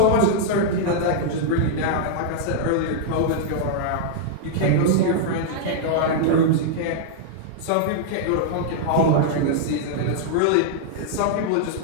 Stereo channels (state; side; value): different; both; correlation -0.01